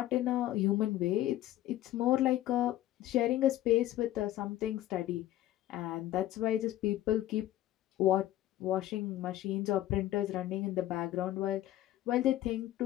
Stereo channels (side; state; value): right; quieter; 14.1 dB